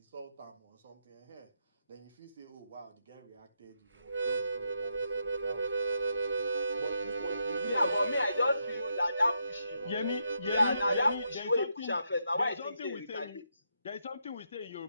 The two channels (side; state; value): both; inverted; correlation -0.80